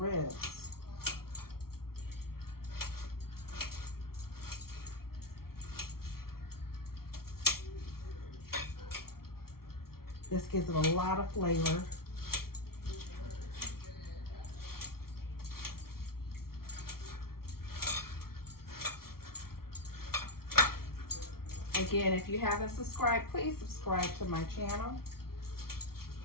This gives it a lot of flavor. Again, if you haven't subscribed, please subscribe to my channel.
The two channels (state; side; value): late; right; 0.94 ms